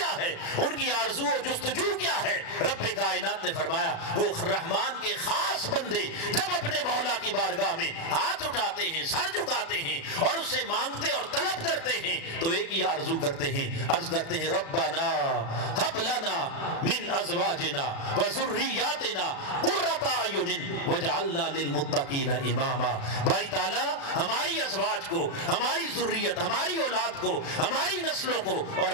ہے، ان کی آرزو و جستجو کیا ہے۔ رب کائنات نے فرمایا وہ رحمان کے خاص بندے جب اپنے مولا کی بارگاہ میں ہاتھ اٹھاتے ہیں، سر جھکاتے ہیں اور اس سے مانگتے اور طلب کرتے ہیں تو ایک ہی آرزو کرتے ہیں، عرض کرتے ہیں ربنا ہب لنا من ازواجنا وذریاتنا قرۃ اعین وجعلنا للمتقین اماما۔ باری تعالیٰ ہماری ازواج کو، ہماری ذریت، ہماری اولاد کو، ہماری نسلوں کو اور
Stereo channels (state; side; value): late; right; 36 ms